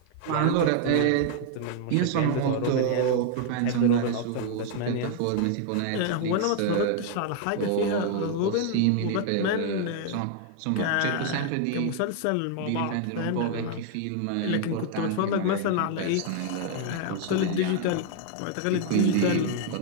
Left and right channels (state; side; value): different; both; correlation 0.00